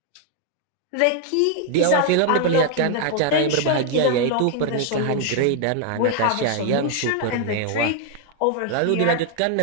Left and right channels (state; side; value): different; both; correlation 0.00